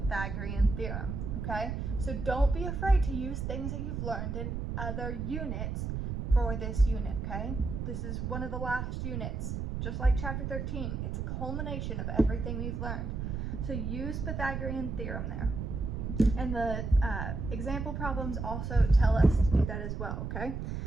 theorem, okay? So don't be afraid to use things that you've learned in other units for this unit, okay? This is one of the last units, just like chapter 13. It's a culmination of everything we've learned. So use Pythagorean theorem there. And the example problems also tell us to do that as well, okay?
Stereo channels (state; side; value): noise; right; rumble, 3 dB below the sound